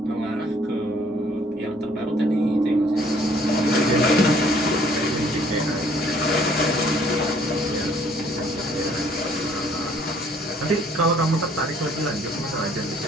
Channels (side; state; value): both; normal; correlation 0.61